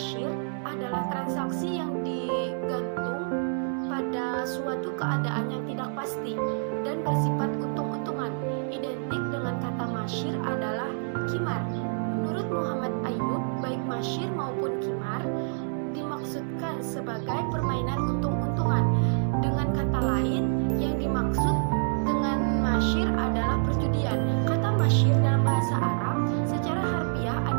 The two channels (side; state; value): left; silent; 58 dB below the other